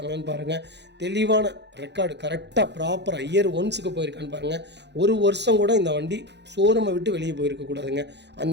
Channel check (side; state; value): left; late; 0.50 ms